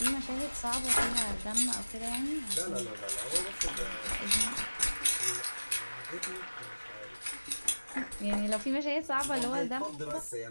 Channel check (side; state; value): both; inverted; correlation -1.00